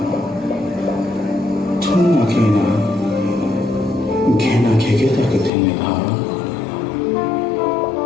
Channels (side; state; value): right; drops out; at 5.5 s